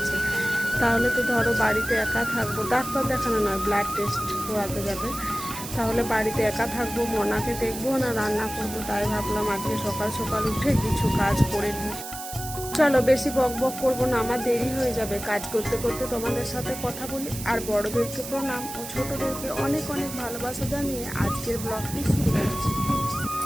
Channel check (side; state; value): right; noise; hiss, 10 dB below the sound